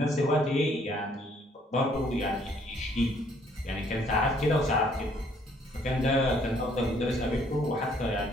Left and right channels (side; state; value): both; normal; correlation 0.64